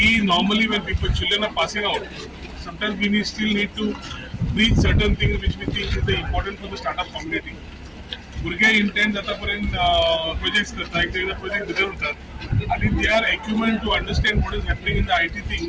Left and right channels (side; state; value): both; identical; correlation 1.00